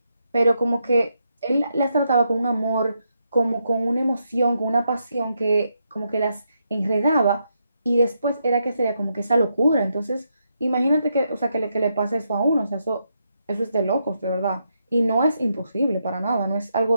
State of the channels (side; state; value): both; inverted; correlation -0.81